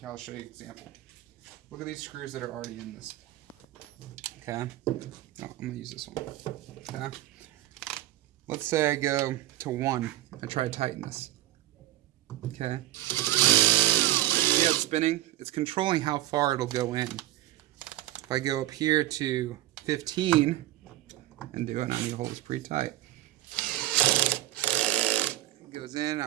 I'll show you an example. Look at these screws that are already in this. Okay, oh, I'm gonna use this one. Okay, let's say I go to 1 and try to tighten this. Okay, see how it's spinning? It's controlling how far it'll go in. If I go up here to 15 and do it, I need to hold this pretty tight. It goes in. Now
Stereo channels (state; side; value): quieter; left; 15.4 dB